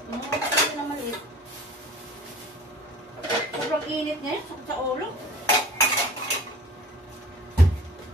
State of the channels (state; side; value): normal; both; correlation 0.44